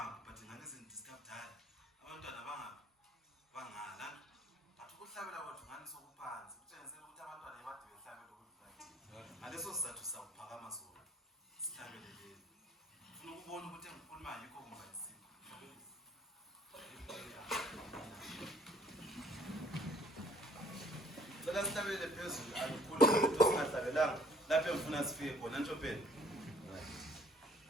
but ngane sindiscaptala. Abantwana bangala. Athi ukuhlabela kwethu ngani sokuphansi. Kutshengisa ukuthi abantwana ebade behlabela ukuthi bathi. Ngaleso sizathu sakuphakama sona. Sihlabele le. Ufuna ukubona ukuthi engikhuluma yikho kumbayisi. Cela sihlabele phezulu akukhulu ukuthi singahlabelanga lapho engifuna sifike khona nje phela.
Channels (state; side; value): normal; both; correlation 0.58